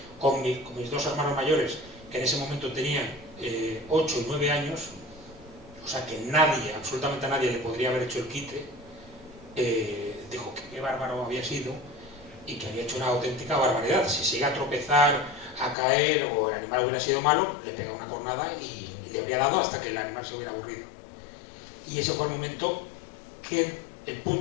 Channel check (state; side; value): drops out; right; at 15.8 s